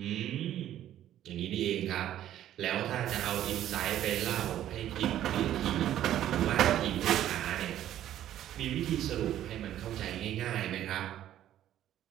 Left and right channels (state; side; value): quieter; left; 12.0 dB